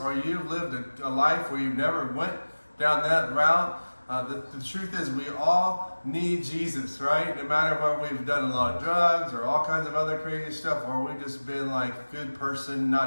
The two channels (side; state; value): both; inverted; correlation -1.00